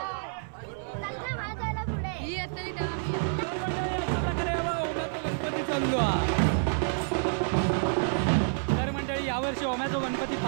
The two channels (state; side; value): silent; left; 59 dB below the other